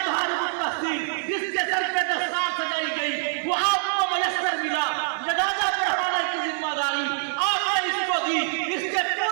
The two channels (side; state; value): left; silent; digital silence